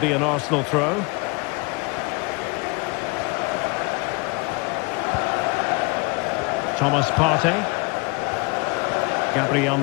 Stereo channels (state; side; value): quieter; right; 27.8 dB